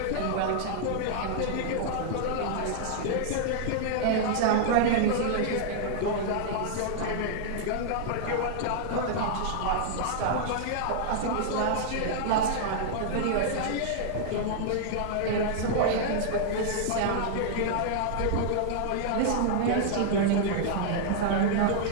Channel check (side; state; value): both; different; correlation -0.01